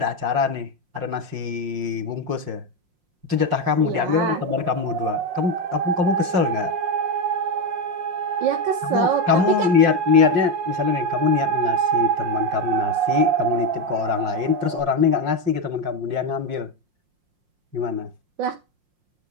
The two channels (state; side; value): late; left; 5.6 ms